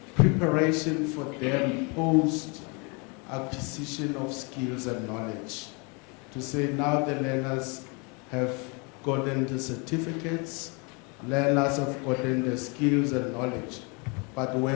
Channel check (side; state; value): right; quieter; 31.8 dB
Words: preparation for them post acquisition of skills and knowledge. To say now the learners have gotten the certificates, learners have gotten the skills and knowledge, but